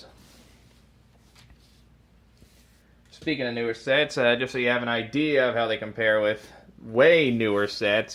Speaking of newer sets, just so you have an idea of how they compare with way newer sets,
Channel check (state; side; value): identical; both; correlation 1.00